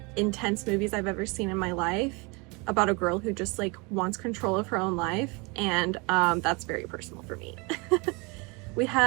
intense movies I've ever seen in my life, about a girl who just like wants control of her own life, and that's very personal for me. We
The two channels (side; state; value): left; quieter; 28.9 dB